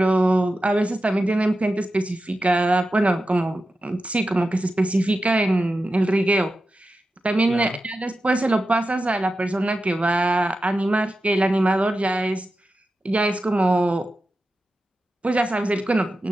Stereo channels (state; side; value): normal; both; correlation 0.91